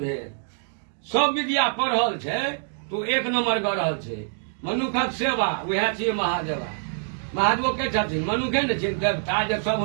भेद सब विद्या पढ़ल छै तो एक नंबर गढ़ रहल छै मनुखक सेवा वएह छियै महादेवा महादेव के छथिन मनुखे ने छिन देवता जे सब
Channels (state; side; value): silent; left; digital silence